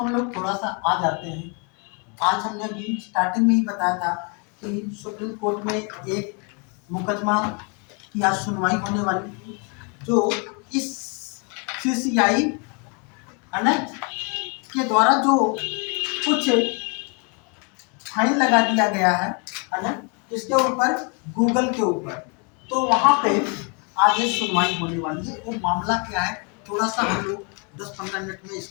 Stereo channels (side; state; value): right; quieter; 35.2 dB